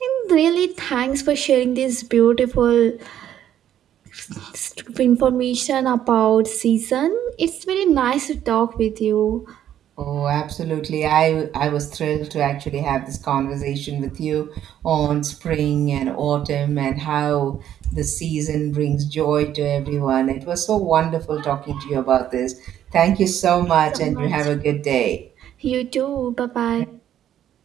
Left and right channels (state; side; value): quieter; left; 10.9 dB